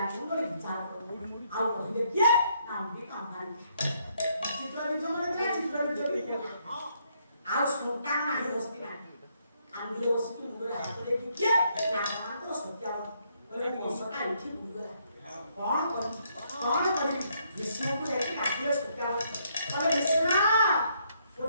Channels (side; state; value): both; inverted; correlation -0.72